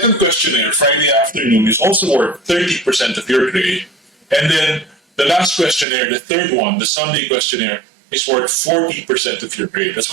questionnaire, Friday afternoon, is also worth 30% of your grade. And then the last questionnaire, the third one, the Sunday questionnaire, is worth 40% of your grade. That's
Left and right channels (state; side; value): drops out; left; at 5.9 s